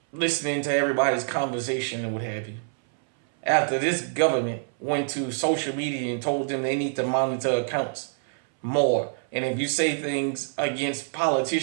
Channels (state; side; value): silent; left; 60 dB below the other